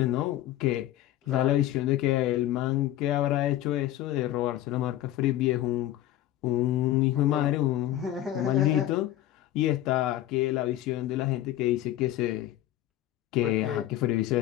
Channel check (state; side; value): quieter; right; 13.7 dB